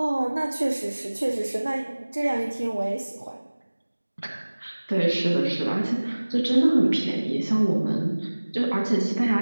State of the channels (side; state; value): both; inverted; correlation -1.00